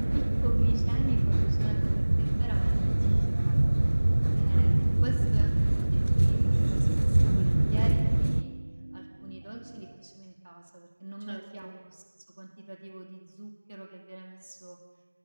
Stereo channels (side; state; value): both; inverted; correlation -1.00